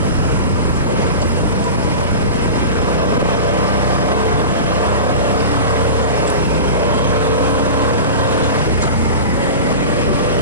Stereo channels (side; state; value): both; inverted; correlation -0.31